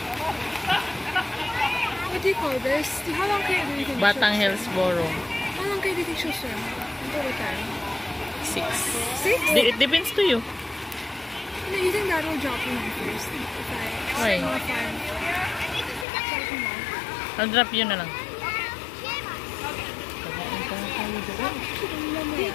What do you call this? How long can you think Batang Hillsboro. How long can you think she'll swim? Until what time? 6. 6? It depends to you. No, you think that will drop you off first? If I Why? swim off time. I'll drop you na lang.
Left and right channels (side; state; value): right; drops out; at 16.1 s